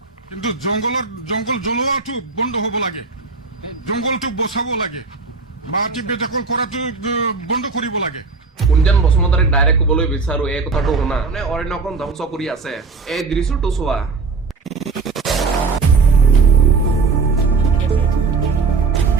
কিন্তু জংঘল জ্বলোৱাটো বন্ধ হ'ব লাগে, জংঘলটো বচাব লাগে, মাটি বেদখল কৰাটো বন্ধ কৰিব লাগে। কুঞ্জন বসুমতাৰীক ডাইৰেক্ট ক'বলৈ বিচাৰো, এই কথাটো শুনা। মানে অৰণ্যখন ধ্বংস কৰি আছে, এই দৃশ্যটো চোৱা।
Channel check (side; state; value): left; quieter; 4.5 dB